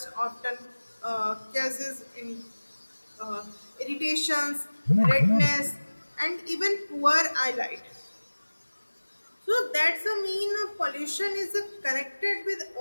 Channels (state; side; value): inverted; both; correlation -1.00